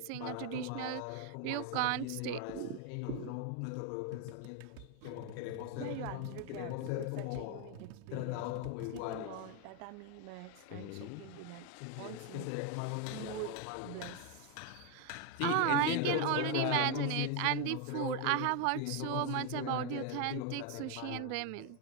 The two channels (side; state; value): both; different; correlation 0.01